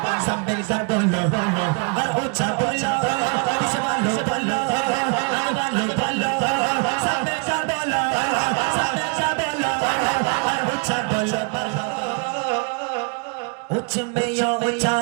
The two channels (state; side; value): quieter; left; 35.8 dB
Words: सब मिलकर बोलो और उच्च बोलो वालो बोलो वालो बोलो सब मिलकर बोलो सब मिलकर बोलो और उच्च बोलो उच्च में यो उच्चा